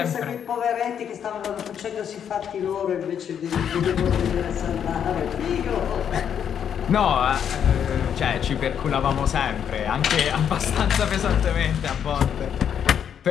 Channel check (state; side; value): quieter; right; 8.5 dB